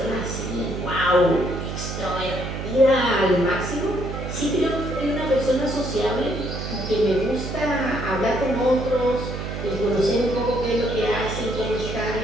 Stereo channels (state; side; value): noise; right; hum, 6 dB below the sound